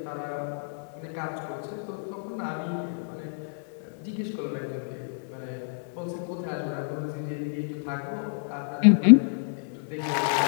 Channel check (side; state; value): right; silent; digital silence